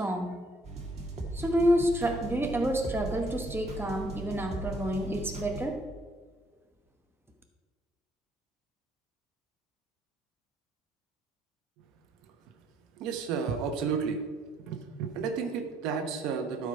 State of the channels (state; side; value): normal; both; correlation 0.67